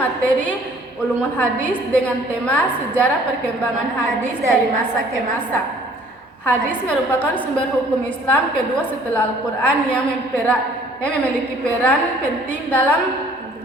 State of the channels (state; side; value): normal; both; correlation 0.56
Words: Ulumul Hadis dengan tema Sejarah Perkembangan Hadis dari Masa ke Masa. Hadis merupakan sumber hukum Islam kedua setelah Al-Quran yang memiliki peran penting dalam